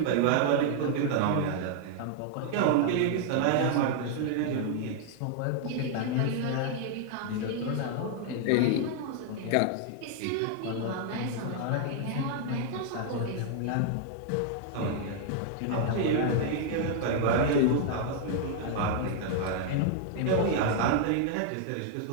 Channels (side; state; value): both; different; correlation 0.00